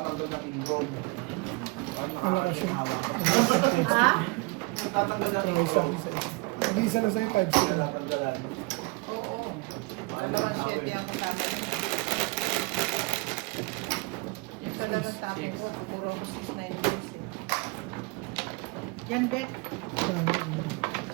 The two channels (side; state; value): left; quieter; 26.8 dB